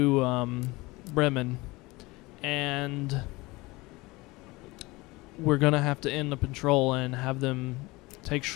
Bremen, and we're going to have to end the patrol and have them take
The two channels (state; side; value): quieter; right; 22.3 dB